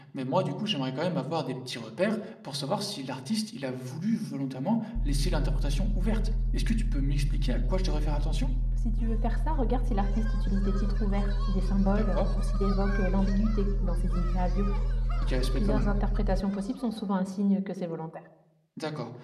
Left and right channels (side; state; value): both; identical; correlation 1.00